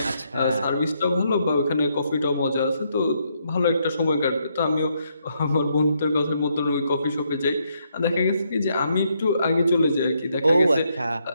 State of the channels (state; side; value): inverted; both; correlation -0.76